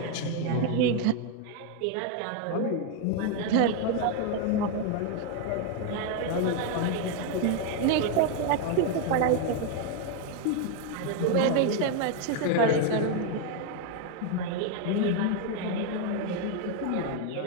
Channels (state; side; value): different; both; correlation 0.01